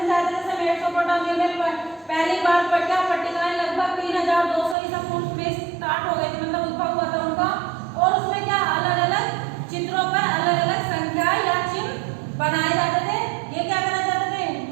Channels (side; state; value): left; drops out; at 4.8 s